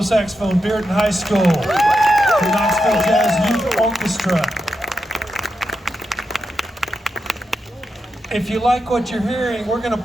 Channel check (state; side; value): normal; both; correlation 0.87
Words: saxophone, Bearden High School, the Knoxville Jazz Youth Orchestra. If you like what you're hearing, we're going to